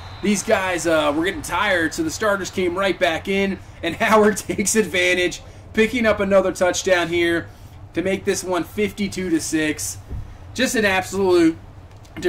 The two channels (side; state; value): both; identical; correlation 1.00